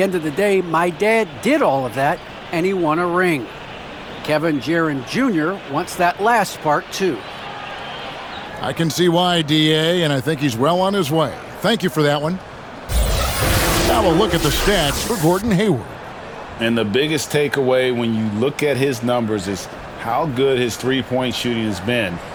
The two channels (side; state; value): both; identical; correlation 1.00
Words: end of the day, my dad did all of that, and he won a ring. Kevin Jaren Jr. wants that last part, too. I can see why, DA, and I think he's well on his way. Thank you for that one. Now we'll look at the stats for Gordon Hayward. And the biggest takeaway when you look at his numbers is how good his three-point shooting has been